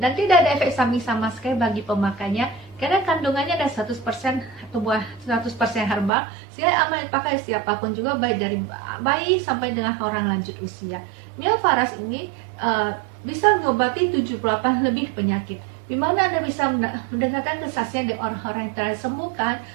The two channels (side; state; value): left; drops out; at 6.1 s